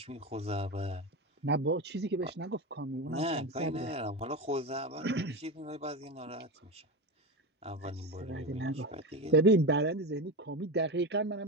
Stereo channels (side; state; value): both; normal; correlation 0.19